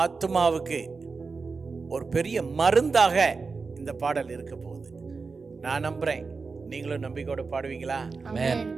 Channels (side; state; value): left; quieter; 4.5 dB